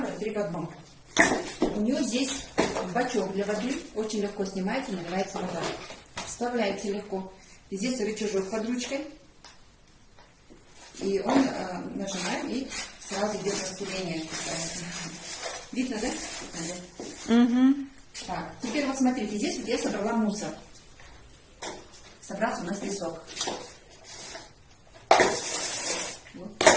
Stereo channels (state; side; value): identical; both; correlation 1.00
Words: 3 в 1. У нее здесь бачок для воды. Очень легко снимается, наливается вода. Вставляется легко. Здесь рычажок под ручкой. И он нажимаем, и сразу идет распыление. Видно, да? Угу. Так, теперь вот смотрите, здесь вот я собрала мусор. Собрался у нас песок. Вот.